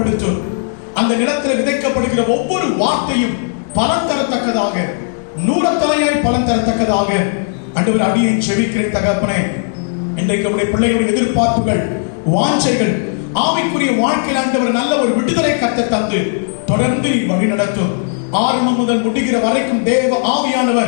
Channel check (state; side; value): silent; right; digital silence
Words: அந்த நிலத்தில் விதைக்கப்படுகிற ஒவ்வொரு வார்த்தையும் பலன் தரத்தக்கதாக, 100 தலையாய் பலன் தரத்தக்கதாக ஆண்டவர் அடியை ஜெபிக்கிறேன். தகப்பனே, இன்றைக்கு உடைய பிள்ளைகளுடைய எதிர்பார்ப்புகள், வாஞ்சைகள், ஆவிக்குரிய வாழ்க்கையில் ஆண்டவர் நல்ல ஒரு விடுதலை கத்த தந்து தொடர்ந்து வழி நடத்தும். ஆரம்பம் முதல் முடிகிற வரைக்கும் தேவ